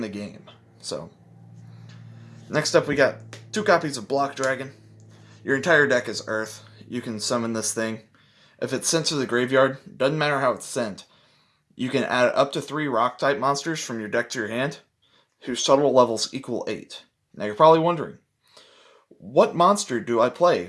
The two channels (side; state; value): both; identical; correlation 1.00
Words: the game. So, next up we got 2 copies of Block Dragon. Your entire deck is Earth. You can summon this thing. If it's sent to the graveyard, doesn't matter how it's sent, you can add up to 3 rock-type monsters from your deck to your hand, whose total levels equal 8. Now you're probably wondering, what monster do I